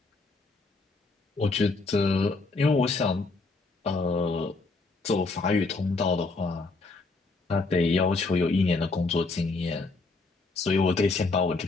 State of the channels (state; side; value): quieter; right; 3.7 dB